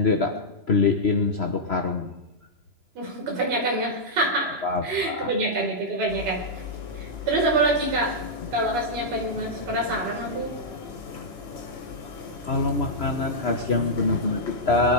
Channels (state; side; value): late; left; 3.0 ms